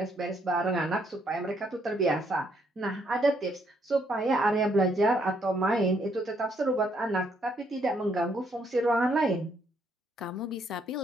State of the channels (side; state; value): both; normal; correlation 0.71